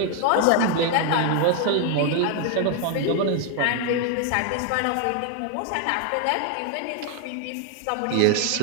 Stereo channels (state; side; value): different; both; correlation 0.00